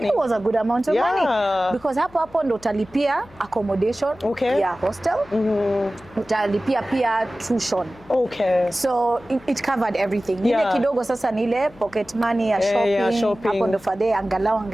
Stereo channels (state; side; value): noise; left; hum, 25 dB below the sound